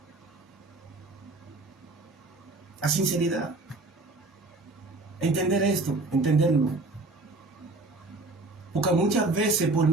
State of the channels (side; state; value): left; quieter; 3.2 dB